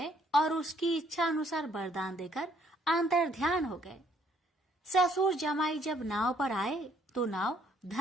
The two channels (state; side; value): normal; both; correlation 0.66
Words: और उसकी इच्छा अनुसार वरदान देकर अंतर ध्यान हो गए। ससुर जमाई जब नाव पर आए तो नाव